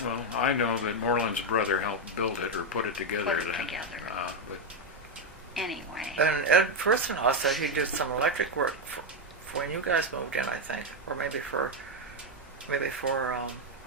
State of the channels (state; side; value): normal; both; correlation 0.04